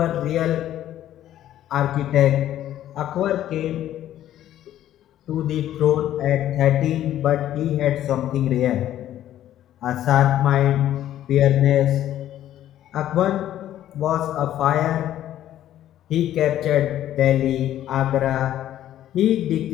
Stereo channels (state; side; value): quieter; right; 12.2 dB